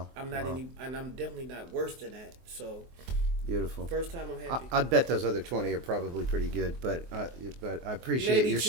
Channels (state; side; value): late; left; 24 ms